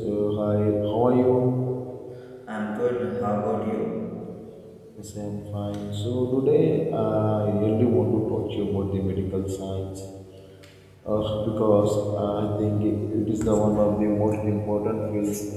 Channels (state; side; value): identical; both; correlation 1.00